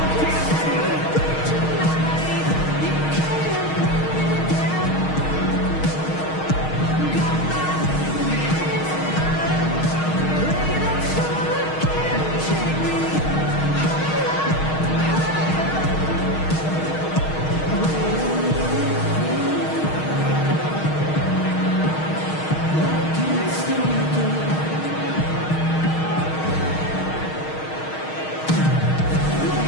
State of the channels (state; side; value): late; right; 6.4 ms